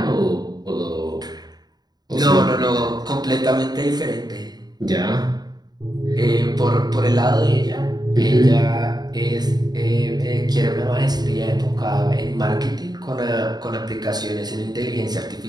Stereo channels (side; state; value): left; late; 0.20 ms